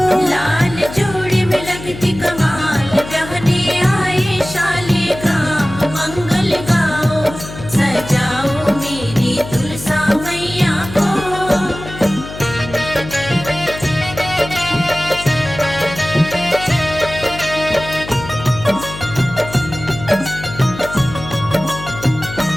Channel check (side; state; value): left; noise; hum, 12 dB below the sound